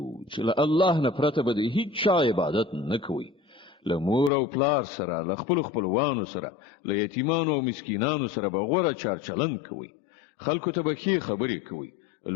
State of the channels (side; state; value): right; drops out; at 4.3 s